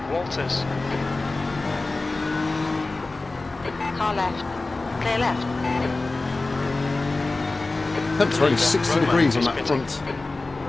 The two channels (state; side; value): quieter; right; 3.3 dB